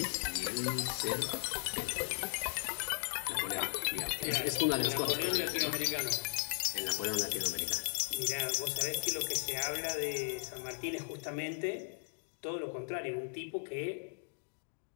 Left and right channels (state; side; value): silent; right; digital silence